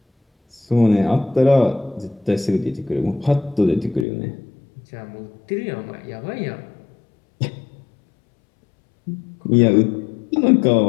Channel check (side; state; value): right; drops out; at 4.0 s